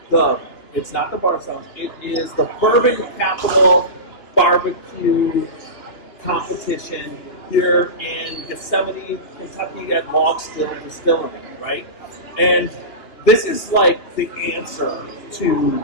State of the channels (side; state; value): right; late; 2.9 ms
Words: it's not the Bar Sounds, it is the Bourbon Capital Barbecue competition here in Gethsemane, Kentucky at Log Still Distillery, right? And this is like the answer to